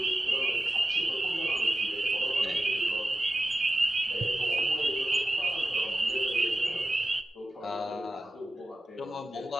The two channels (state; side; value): normal; both; correlation 0.93